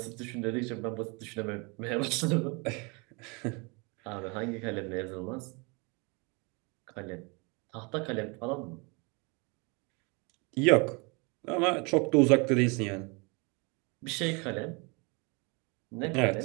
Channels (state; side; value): quieter; left; 30.2 dB